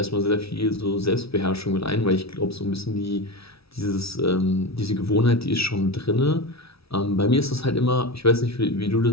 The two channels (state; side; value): late; right; 0.76 ms